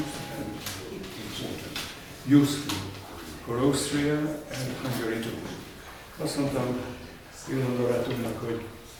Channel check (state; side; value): identical; both; correlation 1.00